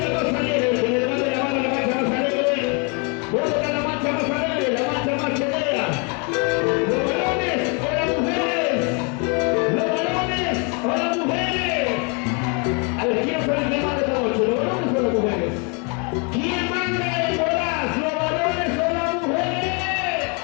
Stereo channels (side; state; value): right; quieter; 34.4 dB